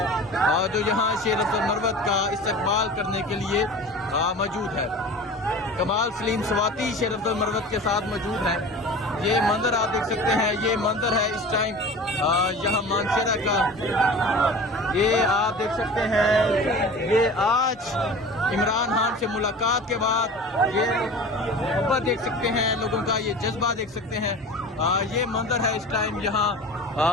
जो यहाँ शेर अफजल मरवत का इस्तकबाल करने के लिए मौजूद है। कमाल सलीम स्वाति शेर अफजल मरवत के साथ मौजूद हैं। ये मंदिर आप देख सकते हैं, ये मंदिर है इस टाइम यहाँ मानसरा का। ये आप देख सकते हैं, ये आज इमरान खान से मुलाकात के बाद ये मोहब्बत देख सकते हैं लोगों का, ये जज्बा देख सकते हैं। ये मंदिर है इस टाइम यहाँ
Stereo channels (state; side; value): normal; both; correlation 0.37